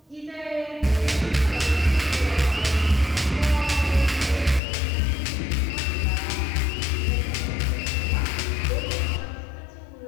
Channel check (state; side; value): drops out; right; at 4.6 s